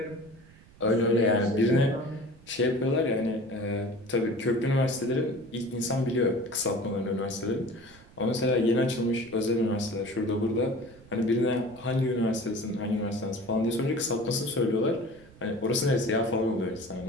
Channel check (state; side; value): noise; right; rumble, 24 dB below the sound